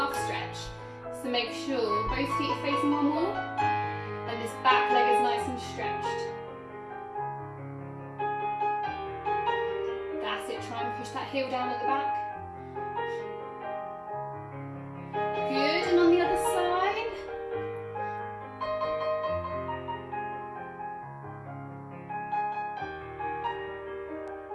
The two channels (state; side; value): identical; both; correlation 1.00